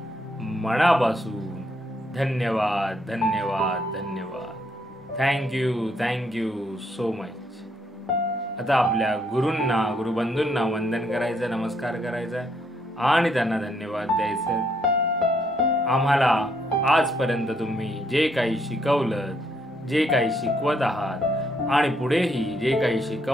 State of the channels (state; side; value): normal; both; correlation 0.73